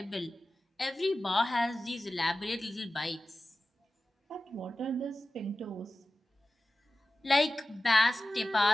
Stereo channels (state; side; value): normal; both; correlation 0.95